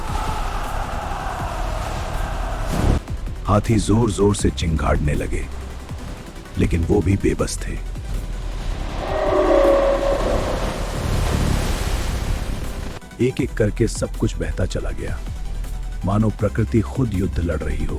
हाथी जोर जोर से चिंगाड़ने लगे, लेकिन वो भी बेबस थे। एक एक करके सब कुछ बहता चला गया, मानो प्रकृति खुद युद्ध लड़ रही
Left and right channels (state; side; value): identical; both; correlation 1.00